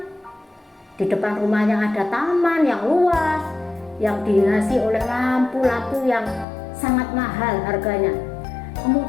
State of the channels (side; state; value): right; drops out; at 6.5 s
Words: di depan rumahnya ada taman yang luas, yang dihiasi oleh lampu-lampu yang sangat mahal harganya.